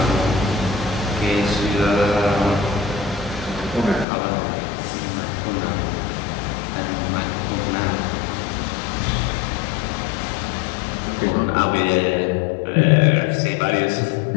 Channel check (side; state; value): right; drops out; at 4.0 s